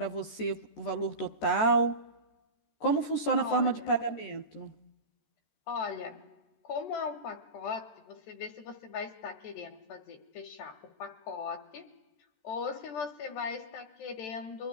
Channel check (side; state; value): right; late; 14 ms